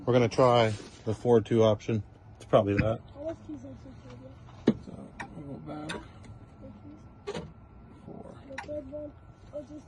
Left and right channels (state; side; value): identical; both; correlation 1.00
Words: We're gonna try the 4-2 option. It's probably that. So we'll go back. 4. The third one, or just